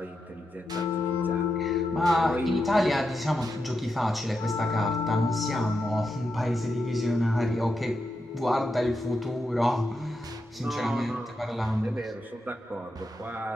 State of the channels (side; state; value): both; normal; correlation 0.86